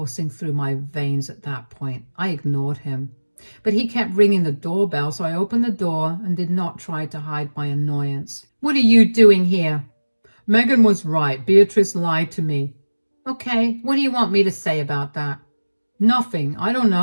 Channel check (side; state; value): both; inverted; correlation -1.00